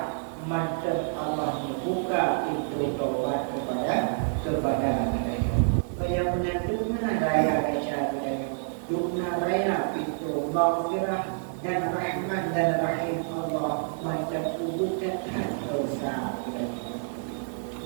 mantap Allah membuka pintu taubat kepada kedayang. Yang menandukna raya keca kedayang, dukna raya pintu maghfirah dan rahmat dan rahim Allah, mantap bukan dosa kedayang.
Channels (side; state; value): left; silent; digital silence